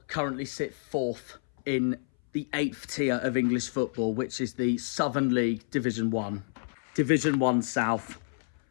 currently sit 4th in the 8th tier of English football, which is the Southern League Division 1. Division 1 South.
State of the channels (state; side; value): silent; right; 58 dB below the other